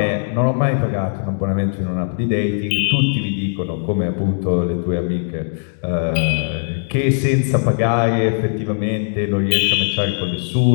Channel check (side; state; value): right; silent; digital silence